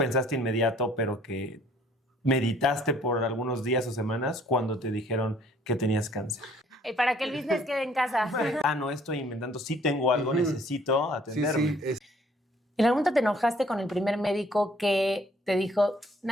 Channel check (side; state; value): both; normal; correlation 0.60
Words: inmediato, pero que meditaste por algunos días o semanas cuando te dijeron que tenías cáncer? Para que el business quede en casa. No estoy inventando, sí tengo algo, necesito atenderme. Sí. ¿En algún momento te enojaste con el primer médico que te dijo,